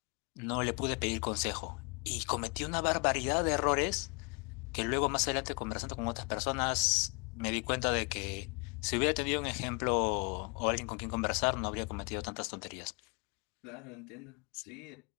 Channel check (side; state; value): right; quieter; 32.3 dB